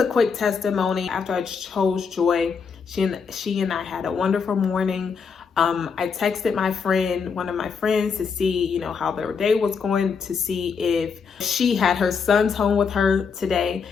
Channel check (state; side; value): quieter; right; 5.8 dB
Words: quick testimony. After I chose joy, she and I had a wonderful morning. I texted one of my friends, to see, how their day was going, to see if she had her sons home with her today.